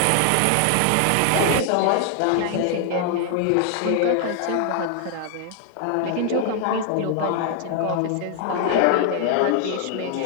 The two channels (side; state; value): both; different; correlation 0.00